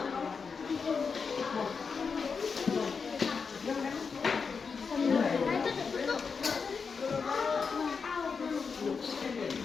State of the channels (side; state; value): right; quieter; 5.4 dB